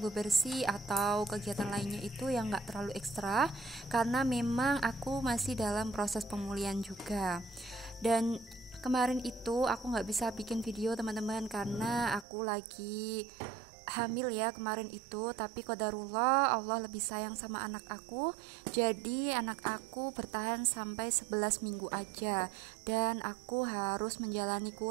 bebersih atau kegiatan lainnya itu yang gak terlalu ekstra, karena memang aku masih dalam proses pemulihan juga. Dan kemarin itu aku gak bisa bikin video teman-teman karena aku lagi hamil ya kemarin itu, tapi qadarullah Allah lebih sayang sama anak aku, jadi anak aku bertahan sampai 11 minggu aja, dan aku harus menjalani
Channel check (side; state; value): left; drops out; at 12.2 s